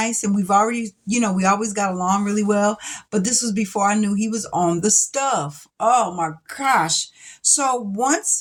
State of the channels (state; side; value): identical; both; correlation 1.00